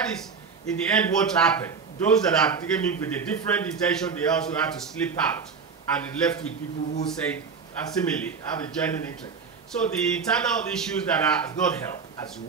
is, in the end, what happened. Those that have taken in with a different intention, they also had to slip out, and it left with people who say, similarly, have a genuine interest. So the internal issues that are not helped as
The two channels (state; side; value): quieter; left; 5.5 dB